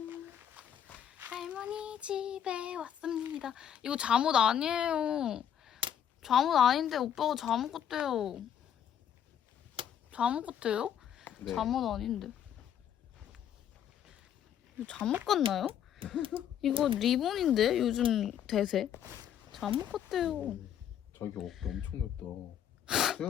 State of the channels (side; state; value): right; quieter; 9.6 dB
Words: 할머니 집에 왔습니다. 이거 잠옷 아니에요. 잠옷 아닌데 오빠가 잠옷 같대요. 잠옷 같아요? 네. 잠옷 아닌데. 이거 잠옷 같나요? 이거 리본인데 요즘 대세. 잠옷 같대요. 저기 어깨 엄청 넓다.